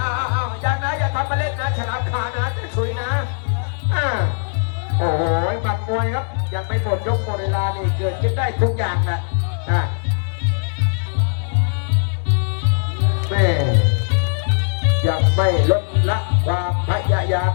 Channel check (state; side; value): silent; right; digital silence